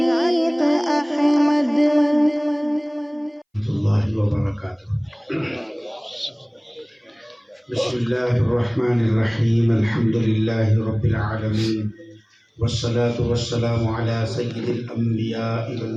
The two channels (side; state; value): both; identical; correlation 1.00